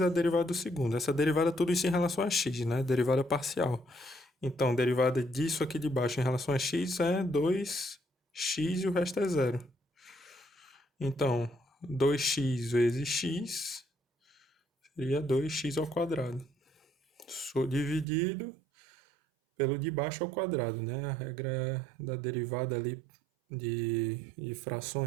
a derivada do segundo. Essa derivada, tudo isso em relação a x, né? Derivada parcial. Então, derivada disso aqui de baixo em relação a x é 2x e o resto é zero. Então, 2x vezes x seria 2x ao quadrado. Dividido pelo de baixo ao quadrado, né? A regra da derivada ali de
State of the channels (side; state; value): left; drops out; at 18.1 s